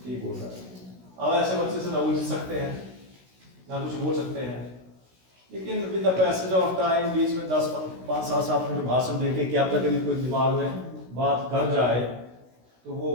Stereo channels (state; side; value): late; left; 16 ms